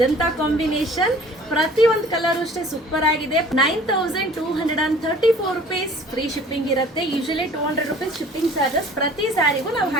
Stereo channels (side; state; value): both; normal; correlation 0.50